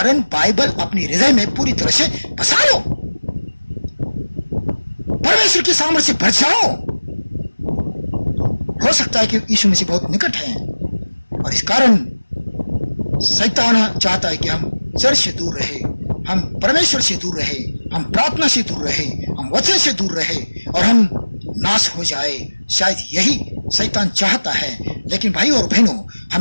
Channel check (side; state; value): both; inverted; correlation -1.00